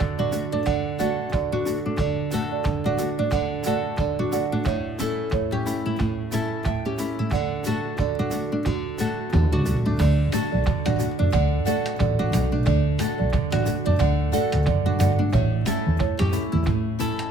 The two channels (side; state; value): both; normal; correlation 0.69